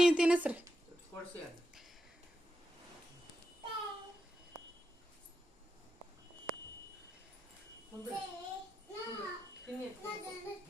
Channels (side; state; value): both; normal; correlation 0.87